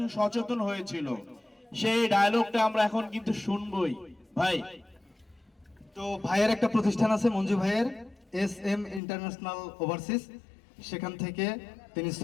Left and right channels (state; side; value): drops out; right; at 9.0 s